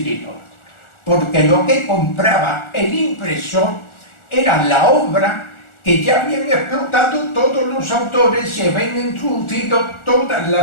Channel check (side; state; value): right; late; 1.4 ms